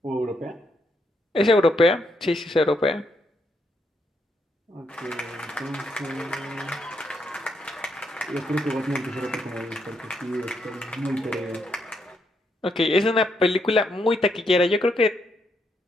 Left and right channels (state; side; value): normal; both; correlation 0.77